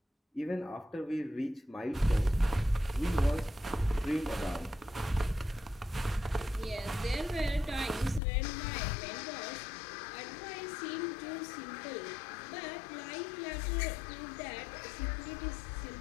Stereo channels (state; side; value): drops out; right; at 8.2 s